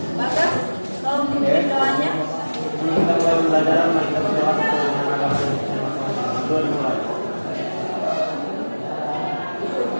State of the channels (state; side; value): inverted; both; correlation -1.00